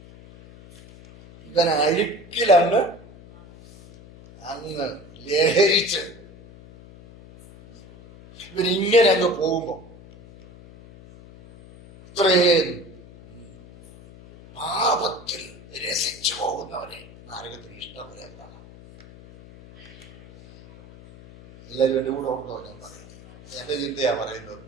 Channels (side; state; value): left; noise; hum, 20 dB below the sound